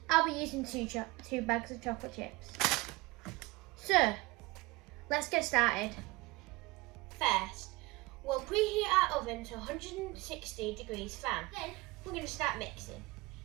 I'll be using two bags of chocolate chips. So, let's get started. First, we'll preheat our oven to 160 degrees Fahrenheit. Then, we're going to start mixing.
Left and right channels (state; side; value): quieter; left; 23.1 dB